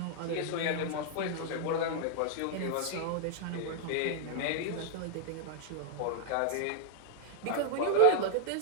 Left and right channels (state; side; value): different; both; correlation -0.01